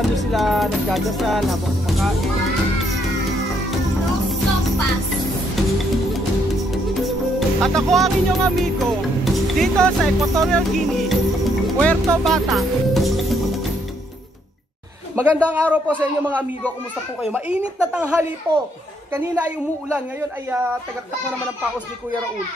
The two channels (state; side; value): normal; both; correlation 0.72